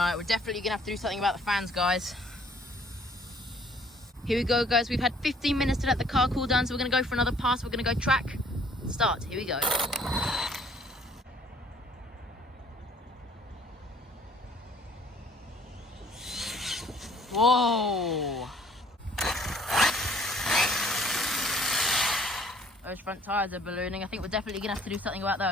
we're definitely going to have to do something about the fans, guys. Here we go, guys. We've had 15 minutes to let the car cool down, so we're going to go for another pass. We're going to go track. Start. Here we go. Whoa. Those front tyres are ballooning. I think we're definitely going to have to do something about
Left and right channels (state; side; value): normal; both; correlation 0.59